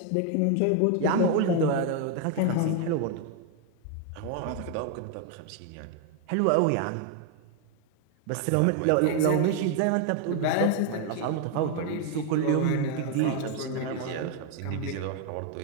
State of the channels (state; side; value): different; both; correlation 0.01